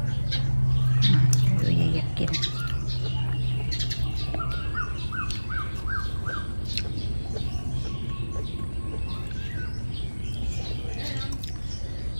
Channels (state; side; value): inverted; both; correlation -1.00